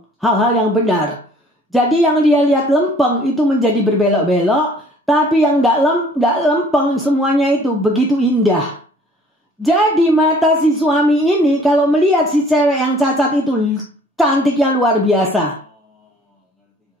hal-hal yang benar. Jadi yang dia lihat lempeng itu menjadi berbelok-belok, tapi yang nggak lempeng semuanya itu begitu indah. Jadi mata si suami ini kalau melihat si cewek yang cacat itu cantiknya luar biasa.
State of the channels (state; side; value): normal; both; correlation 0.55